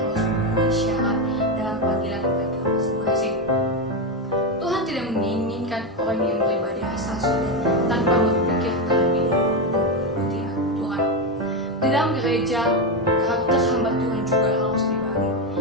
memenuhi syarat dalam panggilan mereka masing-masing. Tuhan tidak menginginkan orang yang beribadah asal sudah tanpa berpikir terlebih dahulu mengikuti aturan. Di dalam gereja, karakter hamba Tuhan juga harus dibagi,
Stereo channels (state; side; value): normal; both; correlation 0.10